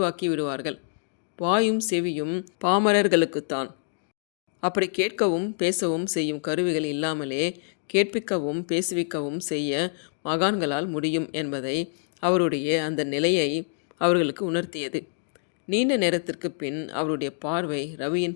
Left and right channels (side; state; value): right; silent; digital silence